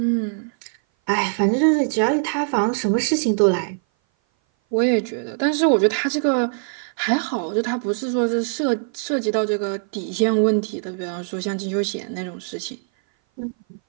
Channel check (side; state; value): left; silent; 58 dB below the other